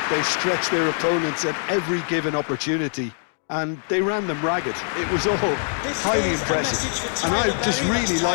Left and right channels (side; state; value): right; silent; digital silence